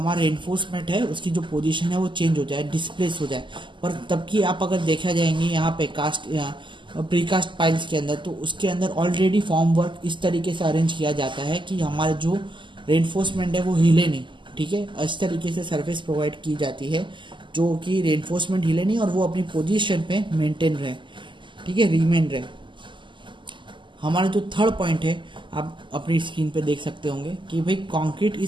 रेनफोर्समेंट है उसकी जो पोजीशन है वो चेंज हो जाए, डिस्प्लेस हो जाए। पर तब की आप अगर देखा जाएंगे यहाँ पे कास्ट प्रीकास्ट पाइल्स के अंदर तो उसके अंदर ऑलरेडी फॉर्म वर्क इस तरीके से अरेंज किया जाता है कि हमारे जो रेनफोर्समेंट है वो हिले नहीं। ठीक है, इस तरीके से सरफेस प्रोवाइड की जाती है जो कि रेनफोर्समेंट हिले नहीं और वो अपनी पोजीशन पे मेंटेन रहे, ठीक है, रिमेन रहे। हमारा जो थर्ड पॉइंट है, आप अपनी स्क्रीन पे देख सकते होंगे कि भाई concrete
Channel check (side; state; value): left; late; 0.24 ms